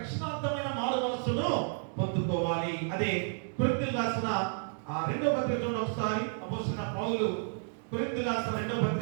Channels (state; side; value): silent; left; 57 dB below the other